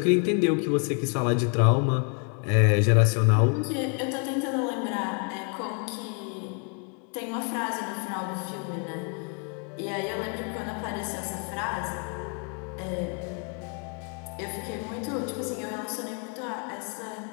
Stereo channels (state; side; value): quieter; right; 39.8 dB